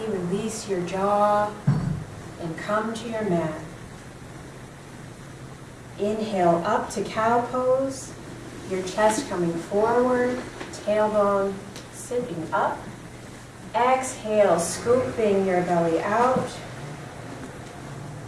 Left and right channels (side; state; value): both; identical; correlation 1.00